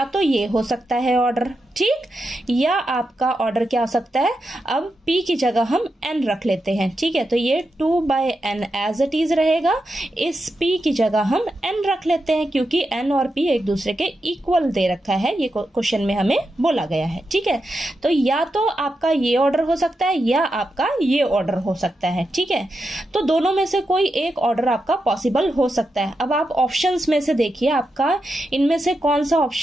तो ये हो सकता है ऑर्डर, ठीक, या आपका ऑर्डर क्या हो सकता है, अब p की जगह हम n रख लेते हैं, ठीक है। तो ये 2/n एज इट इज रहेगा, इस p की जगह हम n रख लेते हैं क्योंकि n और p एक दूसरे के इक्वल दे रखा है, ये क्वेश्चन में हमें बोला गया है, ठीक है। तो या तो आपका ये ऑर्डर हो सकता है या आपका ये ऑर्डर हो सकता है, ठीक है। तो दोनों में से कोई एक ऑर्डर आपका पॉसिबल हो सकता है। अब आप ऑप्शंस में से देखिए आपका इनमें से कौन सा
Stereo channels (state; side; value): normal; both; correlation 0.87